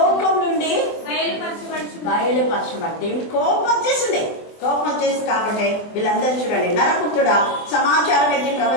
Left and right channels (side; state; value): right; late; 24 ms